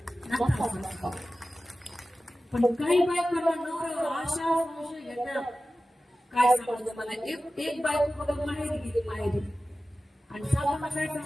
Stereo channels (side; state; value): both; normal; correlation 0.95